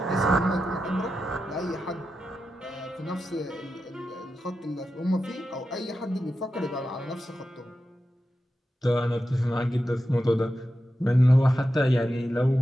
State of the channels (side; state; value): both; normal; correlation 0.90